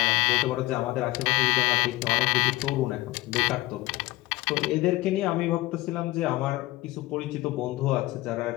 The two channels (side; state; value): right; quieter; 18.7 dB